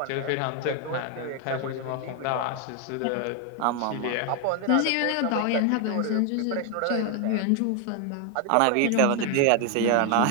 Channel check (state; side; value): different; both; correlation 0.01